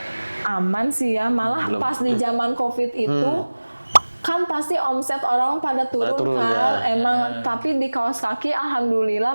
aman sih ya, malah pas di zaman COVID itu kan pasti omset orang pada turun kan, emang. Tapi di kaos kaki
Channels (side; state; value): both; inverted; correlation -1.00